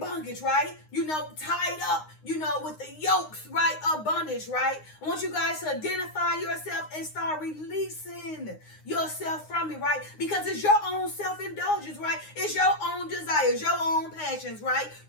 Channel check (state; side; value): late; right; 9.7 ms